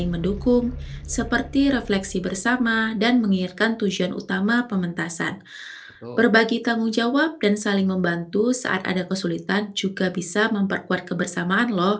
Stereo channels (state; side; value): identical; both; correlation 1.00